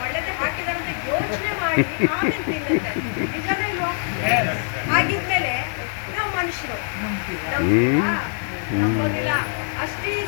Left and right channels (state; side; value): silent; right; digital silence